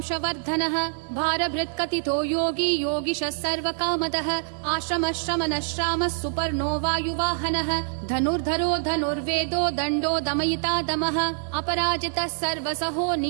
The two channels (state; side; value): silent; left; 61 dB below the other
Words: भारभृत्कथितो योगी योगिशः सर्वकामदः आश्रमः श्रमणः श्रामः सुपर्णो वायुवाहनः धनुर्धरो धनुर्वेदो दण्डो दमयिता दमः अपराजितः सर्वसहो